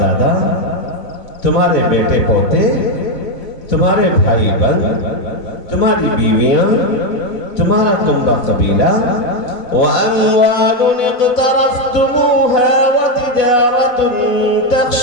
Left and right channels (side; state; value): right; late; 4.1 ms